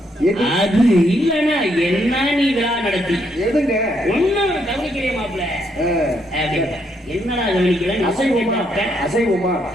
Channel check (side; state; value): both; normal; correlation 0.75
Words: அது இல்லன்னா என்ன நீ விழா நடத்தி ஒன்னும் கவனிக்கிறே மாப்பிள்ள என்னடா கவனிக்கல அசைவமா